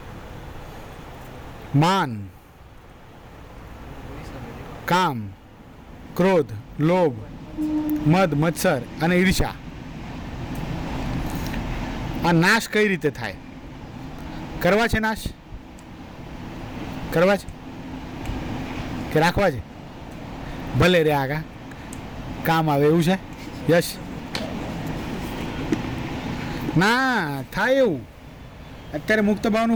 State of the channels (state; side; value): identical; both; correlation 1.00